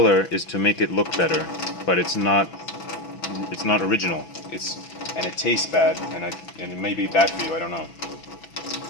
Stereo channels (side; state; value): right; late; 6.0 ms